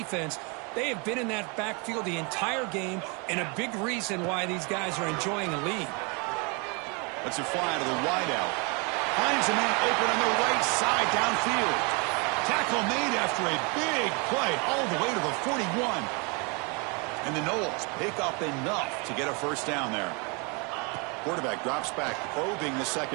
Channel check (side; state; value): left; quieter; 32.2 dB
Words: They have been in that backfield the entire game, and a big reason why these guys are enjoying a lead. That's a fly to the wideout. Finds a man open on the right side downfield. Tackle made after a big play all the way to the 41. And the Noles pick up enough to get a first down there. Quarterback drops back, probing the